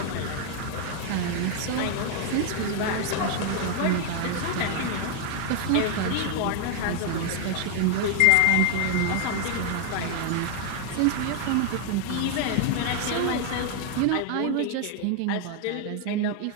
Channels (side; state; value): both; different; correlation 0.00